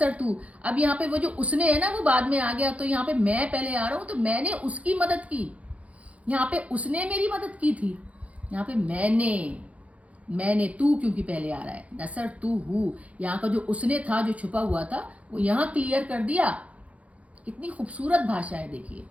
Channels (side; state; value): left; late; 0.066 ms